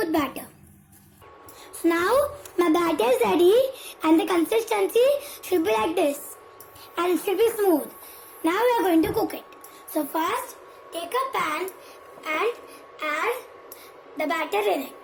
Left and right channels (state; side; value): identical; both; correlation 1.00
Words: batter. So now my batter is ready and the consistency should be like this and it should be smooth. Now we are going to cook it. So first take a pan and add the batter in it.